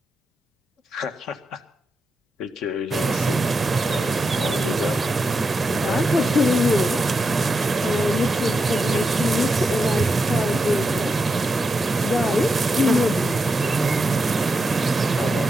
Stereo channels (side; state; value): both; normal; correlation 0.86